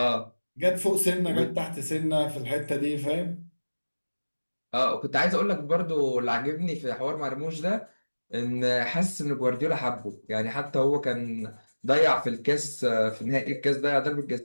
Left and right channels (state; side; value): inverted; both; correlation -1.00